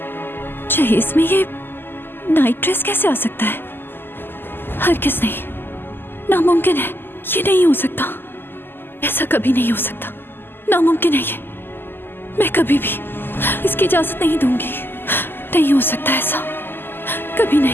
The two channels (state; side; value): late; right; 0.098 ms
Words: जहेज में ये नाइट ड्रेस कैसे आ सकता है? हरगिज़ नहीं, नामुमकिन है, ये नहीं हो सकता, ऐसा कभी नहीं हो सकता, नामुमकिन है ये, मैं कभी भी इसकी इजाजत नहीं दूंगी, नहीं हो सकता ऐसा, कभी